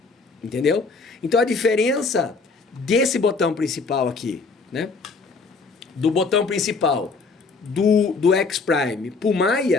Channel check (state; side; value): quieter; right; 4.2 dB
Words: Entendeu? Então a diferença desse botão principal aqui, né? Do botão principal do X-Prime pro